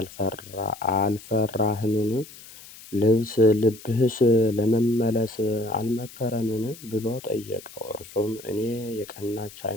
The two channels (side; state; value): left; noise; hiss, 18 dB below the sound